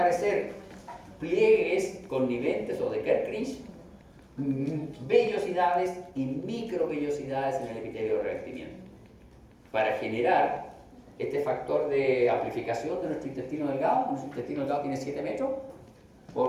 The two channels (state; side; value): identical; both; correlation 1.00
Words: pliegues conniventes o de Kerkrinch, vellosidades y microvellosidades en el epitelio de revestimiento, para generar este factor de amplificación de nuestro intestino delgado. Nuestro intestino delgado tiene 7 metros